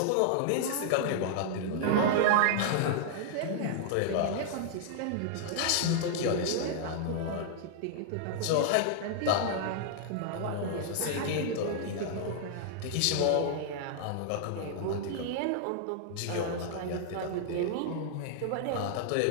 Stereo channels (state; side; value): different; both; correlation -0.01